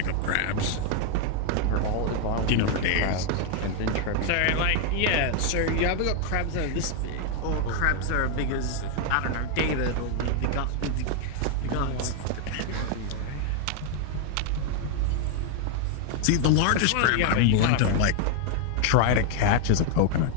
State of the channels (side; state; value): both; different; correlation 0.00